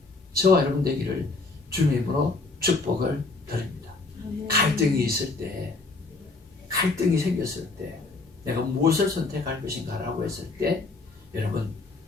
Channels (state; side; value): quieter; right; 3.6 dB